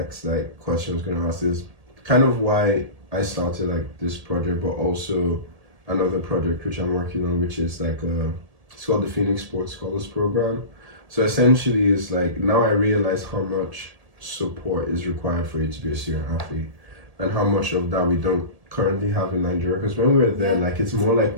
question I was going to ask, is kind of why I started this project, but also another project which I'm working on, which is it's called the Phoenix Sports Scholars Program. So essentially it's now I realize how much support is required for you to be a student athlete, and how much of that we don't currently have in Nigeria. Because when we were there, it's more we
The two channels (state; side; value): late; left; 1.7 ms